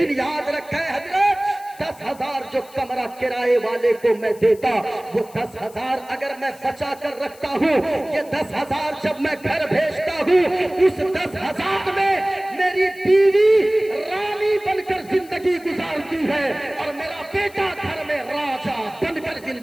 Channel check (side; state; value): left; noise; hiss, 23 dB below the sound